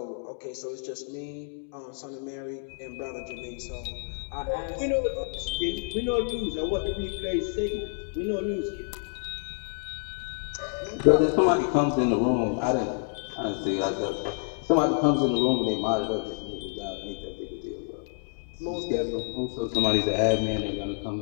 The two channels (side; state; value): right; silent; digital silence